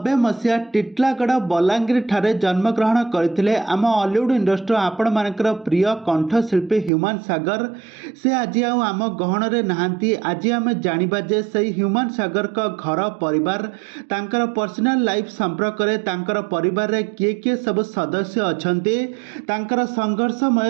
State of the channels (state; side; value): drops out; left; at 6.9 s